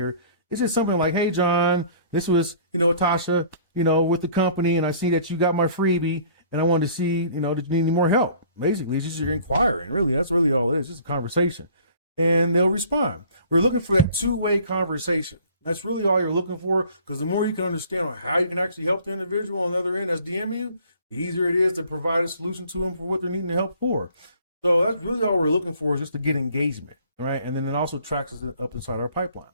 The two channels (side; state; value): both; inverted; correlation -0.52